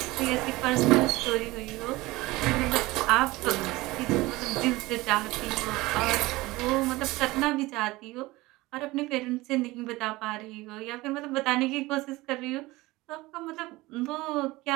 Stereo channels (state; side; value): quieter; left; 20.3 dB